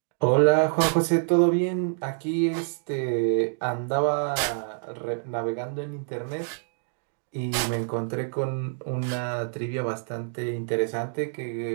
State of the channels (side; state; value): left; silent; digital silence